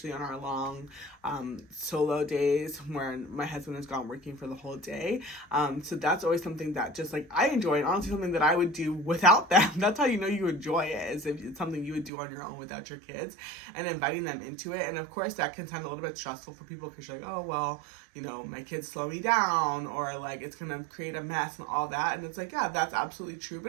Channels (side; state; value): left; drops out; at 12.1 s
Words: on our long solo days when my husband is gone working for the whole day. So that's always something that just like I enjoy, and honestly something that I would do without them. That's how you know you enjoy it, is if it's something you would do on your own without your kids, and inviting them into it. And of course that can sound a little bit stressful for people, because you're like, oh well, my kids slow me down, or like it's gonna create a mess and all that. And it's like, yeah, that's absolutely true,